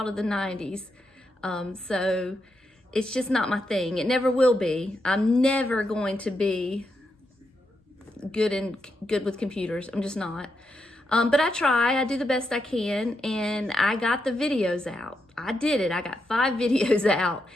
of the 90s. So it's just not my thing. It never will be. I'm never going to be good with computers. I'm just not. But I try. I do the best I can, and I got the videos out. I did it. I got 5 videos out,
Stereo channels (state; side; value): normal; both; correlation 0.83